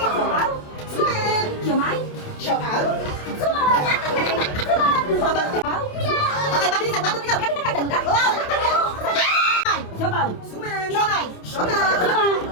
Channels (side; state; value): right; late; 28 ms